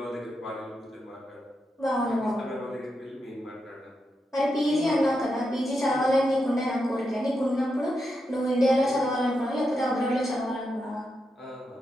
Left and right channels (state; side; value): normal; both; correlation 0.85